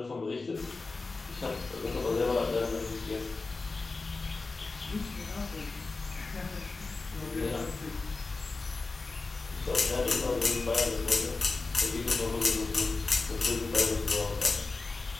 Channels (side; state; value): right; quieter; 3.8 dB